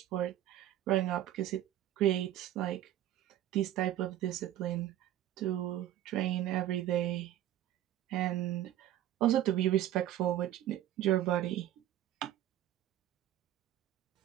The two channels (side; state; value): left; quieter; 12.6 dB